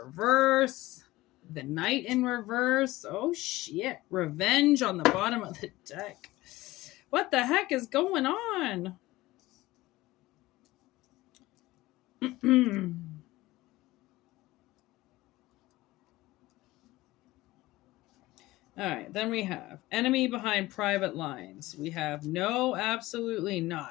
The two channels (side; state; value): right; quieter; 18.4 dB